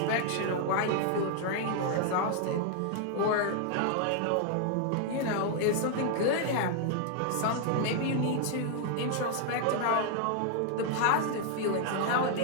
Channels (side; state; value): both; different; correlation 0.00